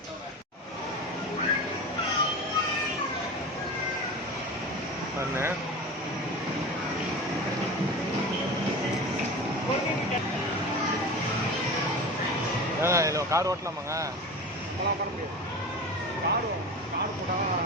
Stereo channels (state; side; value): normal; both; correlation 0.31